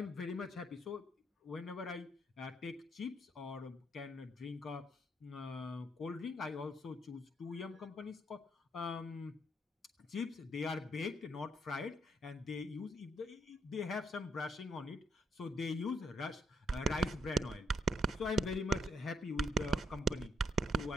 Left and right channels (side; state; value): both; normal; correlation 0.74